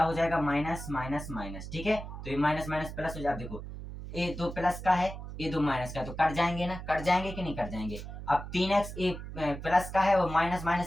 हो जाएगा, माइनस माइनस माइनस। ठीक है, तो ये माइनस माइनस प्लस हो जाए। देखो ये 2 प्लस का है, ये 2 माइनस का है, तो कट जाएंगे ना, कट जाएंगे कि नहीं कट जाएंगे। अब 3x एक प्लस का है और माइनस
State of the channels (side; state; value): right; noise; hum, 10 dB below the sound